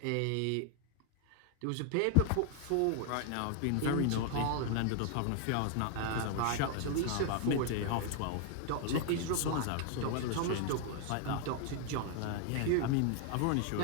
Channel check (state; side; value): different; both; correlation 0.00